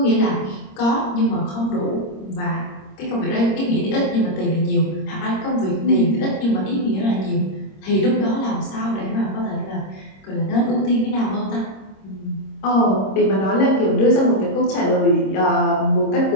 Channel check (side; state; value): right; late; 26 ms